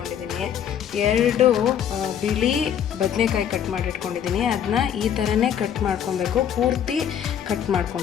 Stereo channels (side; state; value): right; quieter; 9.1 dB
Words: 2 ಬಿಳಿ ಬದನೆಕಾಯಿ ಕಟ್ ಮಾಡಿ ಇಟ್ಕೊಂಡಿದ್ದೀನಿ. ಅದನ್ನ ಈ ಥರನೇ ಕಟ್ ಮಾಡ್ಕೊಬೇಕು, ಪೂರ್ತಿ ಕಟ್